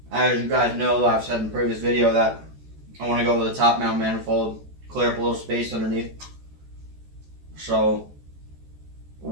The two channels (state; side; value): late; left; 14 ms